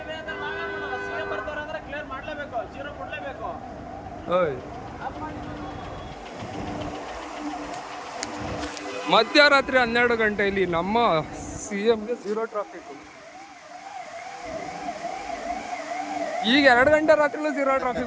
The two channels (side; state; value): both; identical; correlation 1.00